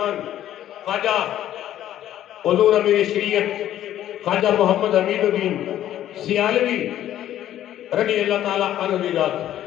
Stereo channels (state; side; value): quieter; right; 12.0 dB